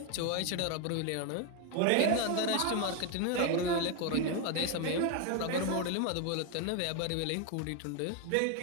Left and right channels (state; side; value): different; both; correlation 0.01